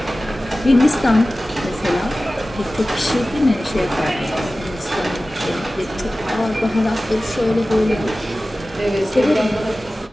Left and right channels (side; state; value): both; normal; correlation 0.96